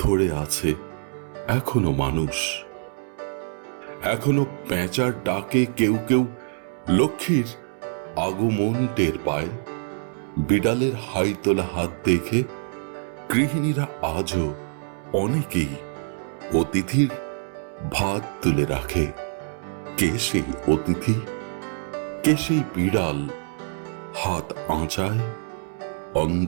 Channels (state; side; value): silent; left; 62 dB below the other